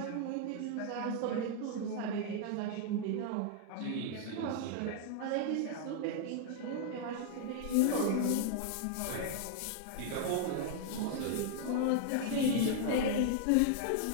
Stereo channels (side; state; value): both; different; correlation -0.01